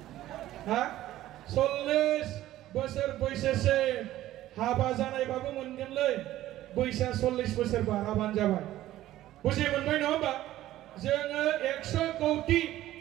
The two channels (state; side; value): quieter; left; 14.4 dB